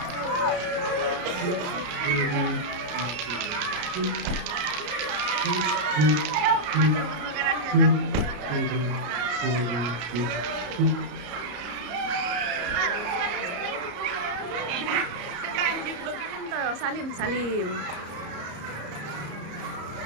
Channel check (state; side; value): late; left; 34 ms